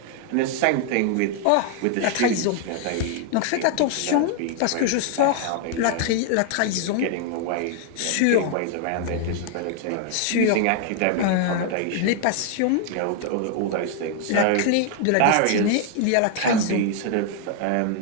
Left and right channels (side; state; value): both; different; correlation 0.00